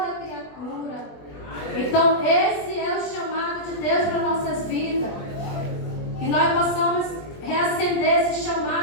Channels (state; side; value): late; right; 20 ms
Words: nós possamos reacender esse